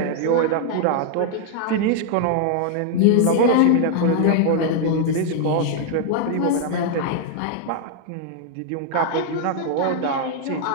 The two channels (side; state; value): both; different; correlation 0.00